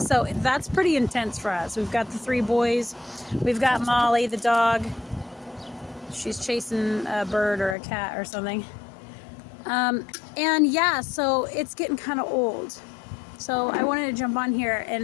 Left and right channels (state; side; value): drops out; right; at 7.8 s